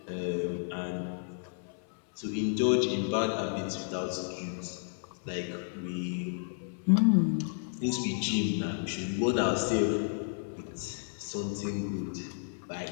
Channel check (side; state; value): right; silent; 56 dB below the other